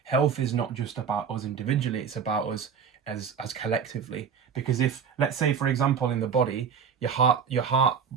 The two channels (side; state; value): left; quieter; 6.9 dB